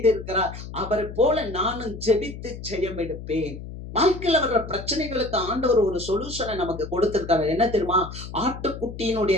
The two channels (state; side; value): noise; left; hum, 11 dB below the sound